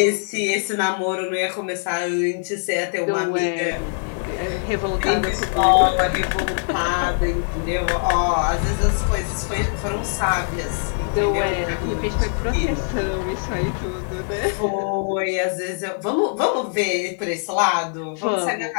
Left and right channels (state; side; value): silent; right; 64 dB below the other